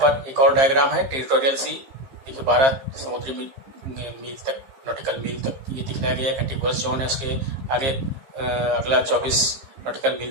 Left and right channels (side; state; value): left; late; 15 ms